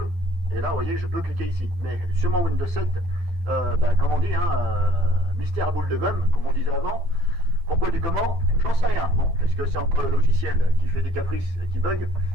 et là vous voyez je peux cliquer ici. Mais sur mon Windows 7, comme on dit, mystère à boule de gomme, comme on disait avant. Pourquoi du comment? J'en sais rien. Bon, est-ce que c'est encore le logiciel qui fait des caprices et qui bug?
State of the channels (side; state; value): left; late; 12 ms